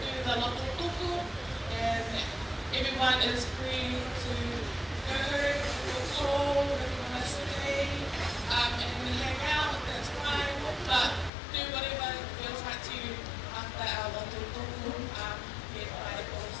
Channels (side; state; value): right; drops out; at 11.3 s